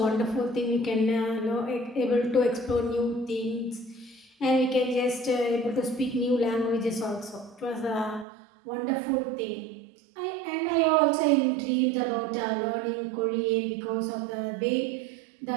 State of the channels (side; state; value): left; drops out; at 8.2 s